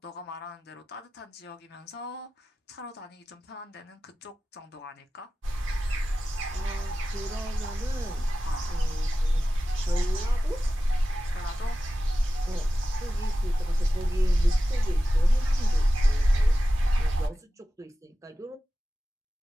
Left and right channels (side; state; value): both; normal; correlation 0.95